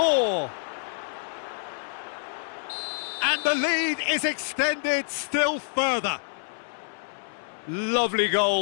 And the lead is extended still further. Lovely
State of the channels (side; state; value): right; silent; 60 dB below the other